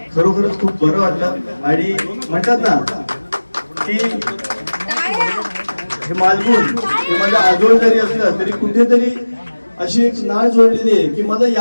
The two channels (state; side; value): inverted; both; correlation -1.00